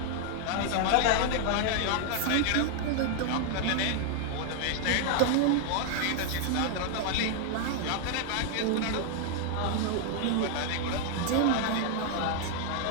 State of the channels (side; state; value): both; different; correlation 0.00